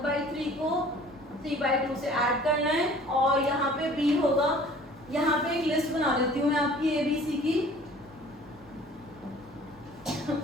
को 3/2 से ऐड करना है और यहाँ पे b होगा। यहाँ पे एक लिस्ट बना देती हूँ मैं आपकी ABC की।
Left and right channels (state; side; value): normal; both; correlation 0.49